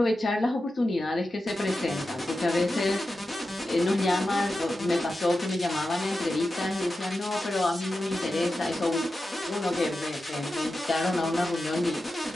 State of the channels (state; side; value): normal; both; correlation 0.91